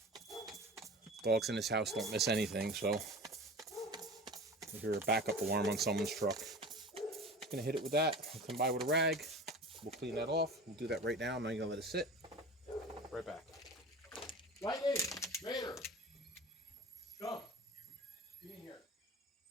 Dogs in this house don't miss anything, so you hear a backup alarm on someone's truck. Just going to hit it with that. I'll come by with a rag. We'll clean that off. We'll do that right now. I'm not going to let it sit. Right back. Lightning! Vader! Come. Get in here.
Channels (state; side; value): normal; both; correlation 0.36